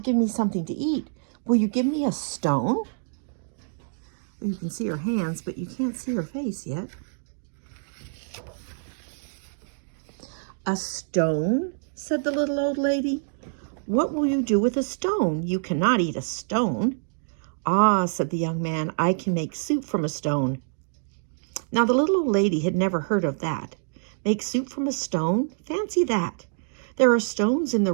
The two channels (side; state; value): left; silent; digital silence